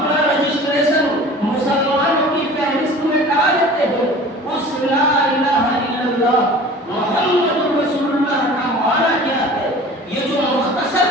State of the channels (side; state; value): both; normal; correlation 0.42